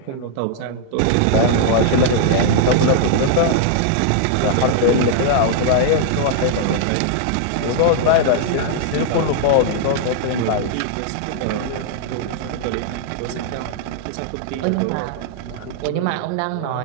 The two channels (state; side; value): different; both; correlation -0.01